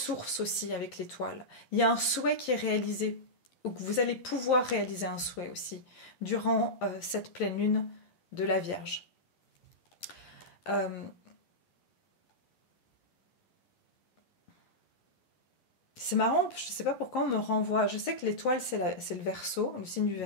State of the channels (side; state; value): right; late; 11 ms